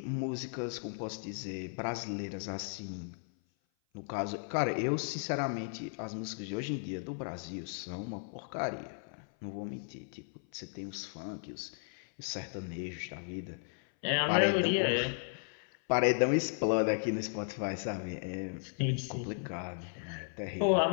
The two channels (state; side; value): silent; right; 54 dB below the other